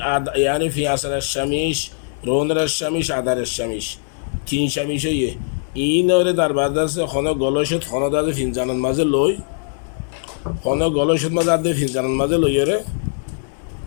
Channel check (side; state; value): right; silent; digital silence